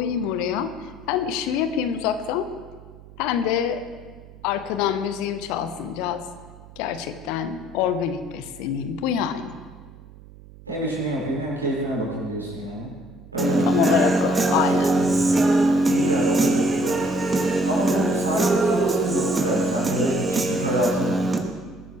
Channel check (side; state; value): right; noise; hum, 20 dB below the sound